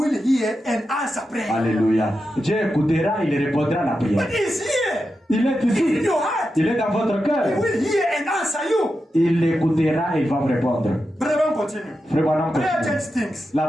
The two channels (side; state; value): both; normal; correlation 0.89